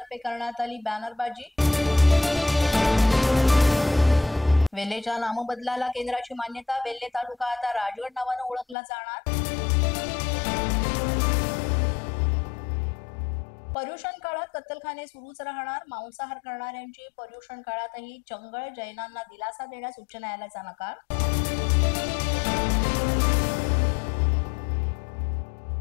करण्यात आली बॅनरबाजी। वेल्हेच्या नामबदलाला केंद्राची मान्यता। वेल्हे तालुका आता राजगड नावाने ओळखला जाणार। पर्युषण काळात कत्तलखाने सुरूच राहणार। मांसाहार करणाऱ्यांची पर्युषण काळातही चंगळ। जैनांना दिलासा देण्यास उच्च न्यायालयाचा नकार।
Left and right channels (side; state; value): right; drops out; at 8.8 s